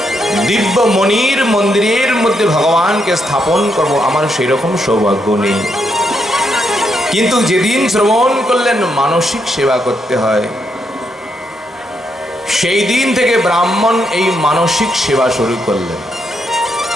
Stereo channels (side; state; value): both; normal; correlation 0.79